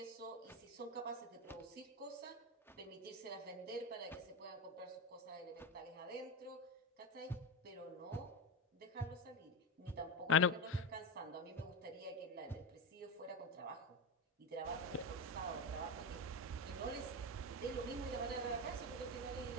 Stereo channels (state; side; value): normal; both; correlation 0.16